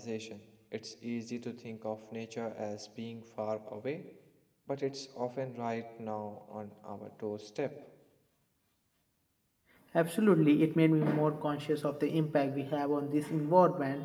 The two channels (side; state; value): both; identical; correlation 1.00